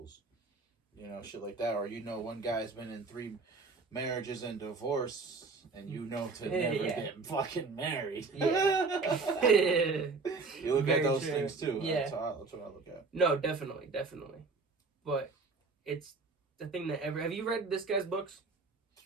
You know, shit like that. Or you know one guy's been in 3 marriages and divorce, and you know to never get fucking married. Yeah. You look at those things too. Yeah. That's what I look at. No, definitely. But it's the thing that have you read this guy's books?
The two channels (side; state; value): left; quieter; 4.1 dB